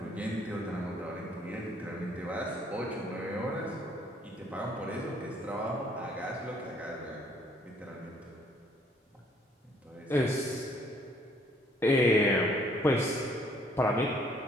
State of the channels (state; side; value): normal; both; correlation 0.63